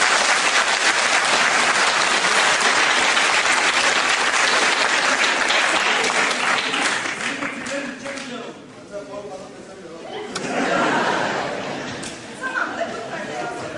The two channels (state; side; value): identical; both; correlation 1.00